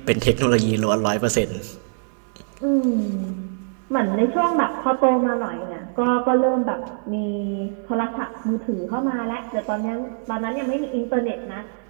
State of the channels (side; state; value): left; silent; digital silence